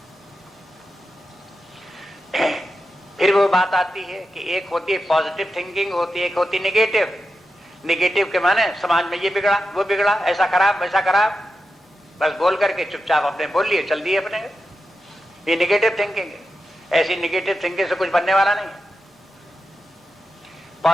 फिर वो बात आती है कि एक होती है पॉजिटिव थिंकिंग, होती है एक होती है निगेटिव। निगेटिव के माने समाज में ये बिगड़ा, वो बिगड़ा, ऐसा खराब, वैसा खराब, बस बोल करके चुपचाप अपने बोल लिए, चल दिए अपने। ये निगेटिव थिंकिंग है। ऐसी निगेटिव थिंकिंग से कुछ बनने वाला नहीं।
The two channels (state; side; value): normal; both; correlation 0.90